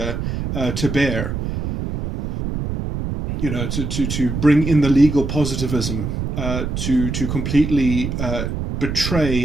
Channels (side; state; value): right; noise; rumble, 3 dB below the sound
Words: to bear. To bring in the legal positivism, to completely